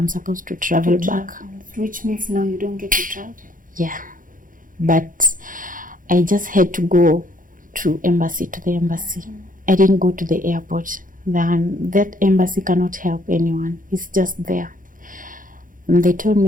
supposed to travel back. Which means now you don't get to travel? Yeah. But I just had to go to the embassy. I didn't go to the airport. That embassy cannot help anyone. It's just there. And they told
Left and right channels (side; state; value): left; late; 0.39 ms